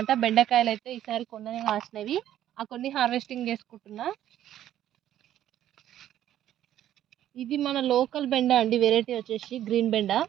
బెండకాయలైతే ఈసారి కొన్ననే కాసినవి. ఆ కొన్ని హార్వెస్టింగ్ చేసుకుంటున్నా. ఇది మన లోకల్ బెండ అండి. వెరైటీ వచ్చేసి గ్రీన్ బెండ.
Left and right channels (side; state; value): left; quieter; 11.9 dB